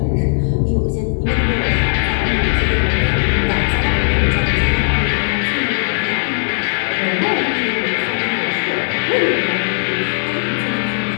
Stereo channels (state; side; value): silent; right; 63 dB below the other